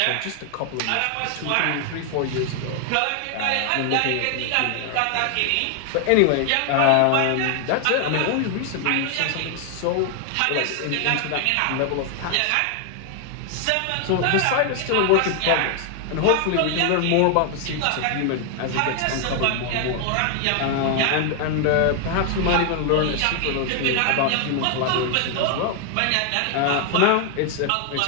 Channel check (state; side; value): different; both; correlation 0.00